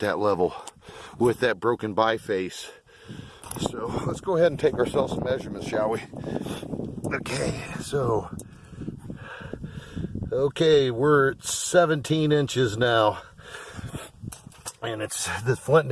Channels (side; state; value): both; identical; correlation 1.00